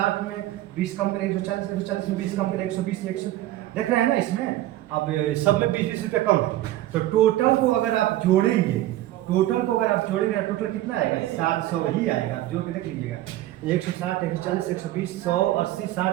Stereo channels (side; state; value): left; quieter; 15.0 dB